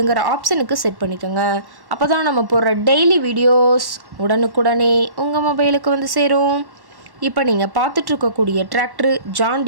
ஆப்ஷனுக்கு செட் பண்ணிக்கோங்க. அப்போ தான் நம்ம போடுற டெய்லி வீடியோஸ் உடனுக்குடனே உங்கள் மொபைலுக்கு வந்து சேரும். இப்போ நீங்கள் பார்த்துட்ருக்கக்கூடிய டிராக்டரு ஜான்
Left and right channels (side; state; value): left; late; 1.1 ms